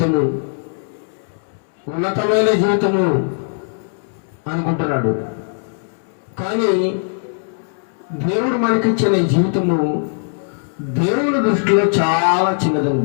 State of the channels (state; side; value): silent; right; 66 dB below the other